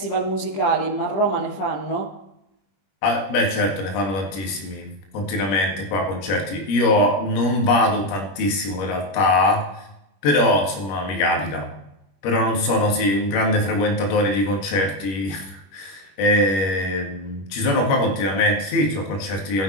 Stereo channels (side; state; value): right; late; 21 ms